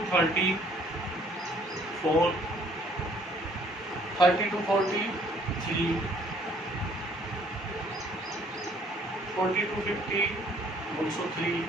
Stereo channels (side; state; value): both; normal; correlation 0.60